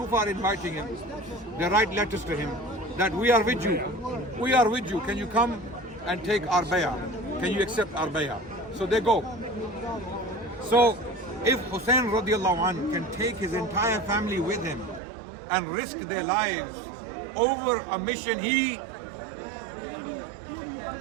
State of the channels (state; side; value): drops out; left; at 15.0 s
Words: are inviting him. They write letters to him that we are with you. We are with you. Can you come and take our bay'ah? Can you accept our bay'ah? So they go. So if Hussein radiallahu anh can take his entire family with him and risk their lives over a mission he